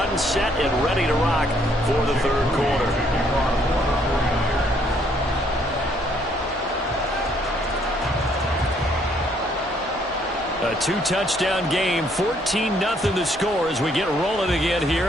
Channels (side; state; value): both; normal; correlation 0.67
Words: set and ready to rock for the third quarter. A 2-touchdown game, 14-0 the score as we get rolling again here